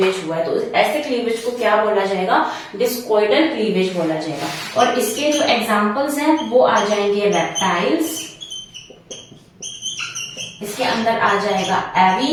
हुआ है, तो ऐसे क्लीवेज को क्या बोला जाएगा, डिस्कॉइडल क्लीवेज बोला जाएगा। और इसके जो एग्जांपल्स हैं वो आ जाएंगे रेप्टाइल्स, इसके अंदर आ जाएगा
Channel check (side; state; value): both; identical; correlation 1.00